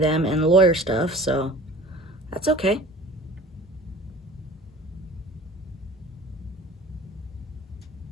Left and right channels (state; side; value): normal; both; correlation 0.44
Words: and lawyer stuff, so that's okay.